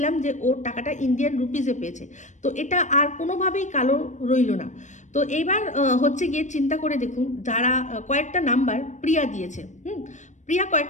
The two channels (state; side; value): late; right; 0.35 ms